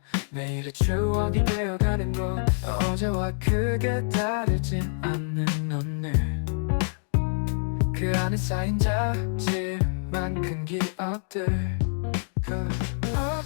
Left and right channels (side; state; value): right; silent; digital silence